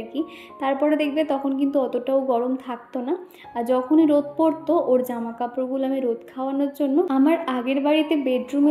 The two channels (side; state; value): both; identical; correlation 1.00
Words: কি। তারপরে দেখবে তখন কিন্তু অতটাও গরম থাকতো না, আর যখনই রোদ পড়তো ওর জামা কাপড়গুলো আমি রোদ খাওয়ানোর জন্য আমার আগের বাড়িতে বেডরুমে